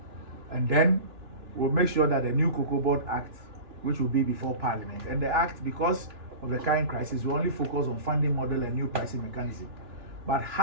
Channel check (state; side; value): late; left; 2.9 ms